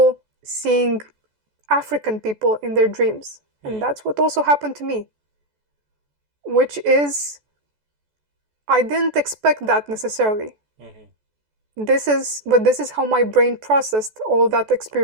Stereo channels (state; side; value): late; left; 14 ms